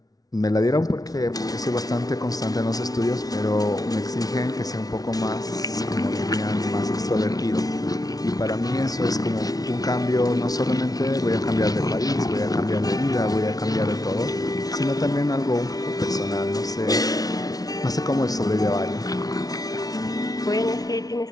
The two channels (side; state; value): right; late; 0.18 ms